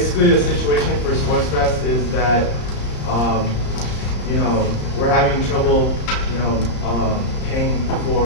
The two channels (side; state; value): right; late; 34 ms